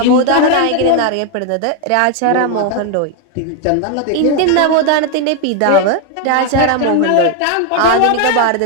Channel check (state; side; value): different; both; correlation 0.01